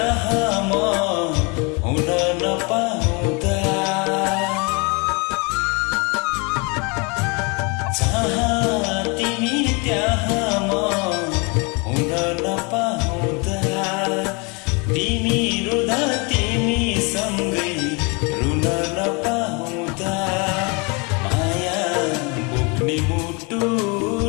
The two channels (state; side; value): quieter; right; 30.7 dB